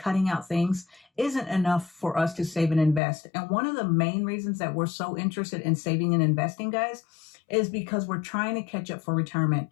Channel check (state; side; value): drops out; right; at 3.0 s